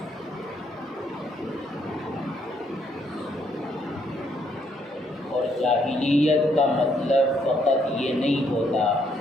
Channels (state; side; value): normal; both; correlation 0.71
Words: اور جاہلیت کا مطلب فقط یہ نہیں ہوتا